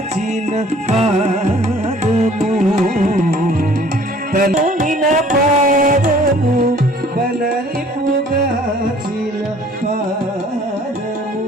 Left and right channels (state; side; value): normal; both; correlation 0.54